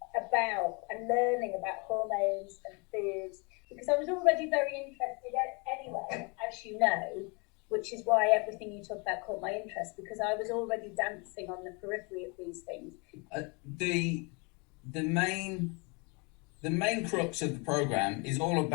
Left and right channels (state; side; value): quieter; right; 31.2 dB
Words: about and learning about hormones and foods because I was already very interested anyway, as you know, which is why everything you talk about caught my interest because I was already dancing on the periphery of these things. The main crux of the program is all